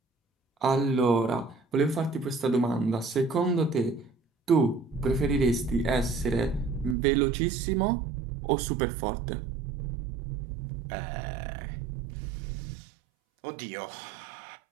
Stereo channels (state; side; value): drops out; left; at 7.0 s